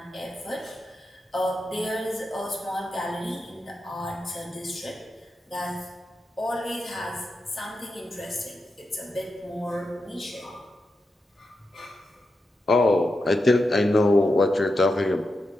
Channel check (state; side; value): normal; both; correlation 0.88